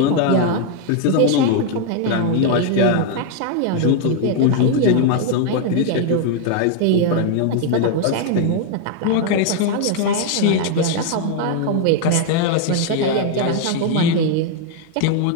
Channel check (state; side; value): different; both; correlation 0.01